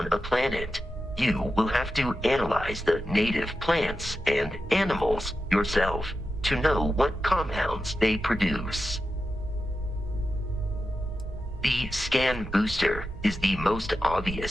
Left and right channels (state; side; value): normal; both; correlation 0.91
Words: a planet, you will have to analyze the native plants and animals yourself to know what compounds they produce. The scan booster is the most